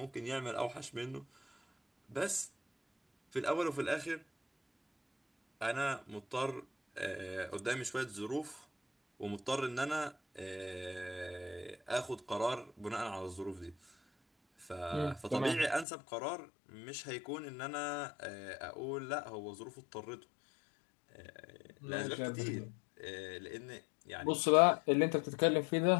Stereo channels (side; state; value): right; drops out; at 15.9 s